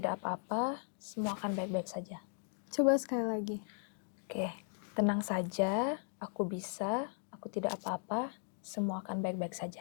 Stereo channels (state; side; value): silent; right; 53 dB below the other